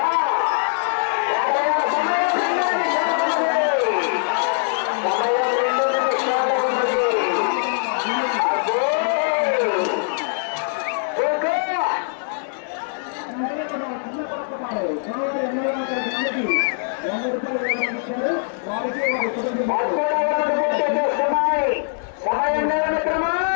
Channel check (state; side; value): silent; right; 64 dB below the other